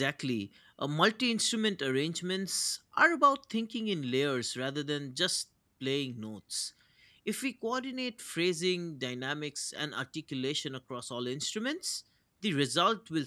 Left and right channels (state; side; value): identical; both; correlation 1.00